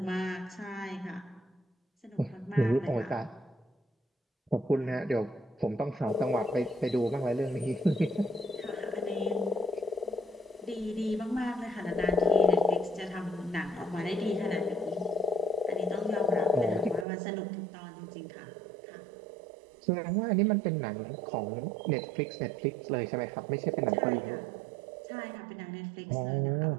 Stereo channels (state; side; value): drops out; left; at 17.1 s